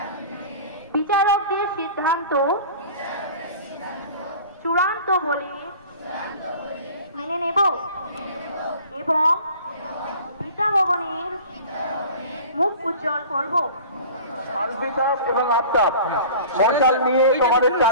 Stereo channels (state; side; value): inverted; both; correlation -0.42